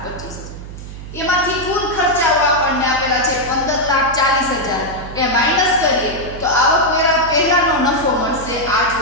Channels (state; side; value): noise; right; hum, 12 dB below the sound